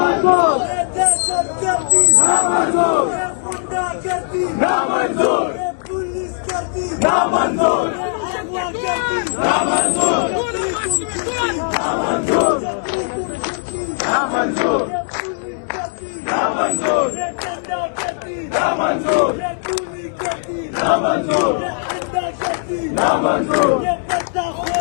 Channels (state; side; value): silent; right; digital silence